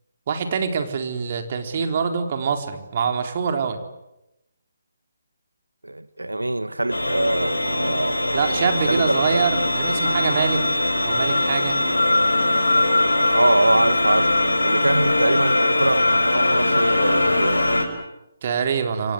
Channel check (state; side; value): inverted; both; correlation -0.91